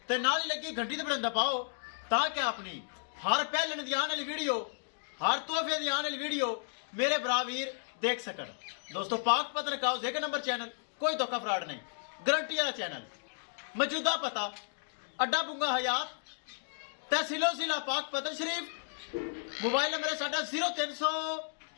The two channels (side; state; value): right; silent; digital silence